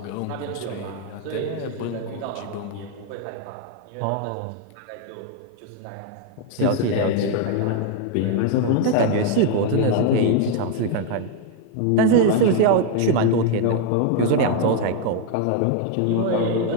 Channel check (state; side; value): different; both; correlation 0.01